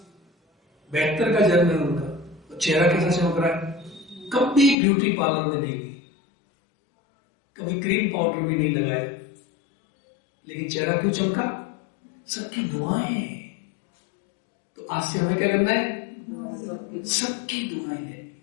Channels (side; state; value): right; drops out; at 4.8 s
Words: 72 का जन्म है उनका। तो चेहरा कैसा चमक रहा है? कभी ब्यूटी पार्लर में नहीं गई, कभी क्रीम पाउडर भी नहीं लगाया, लेकिन चेहरा क्यों चमका? सबकी दुआएं। तो आज से हमें क्या करना है? सबकी दुआएं लेनी है,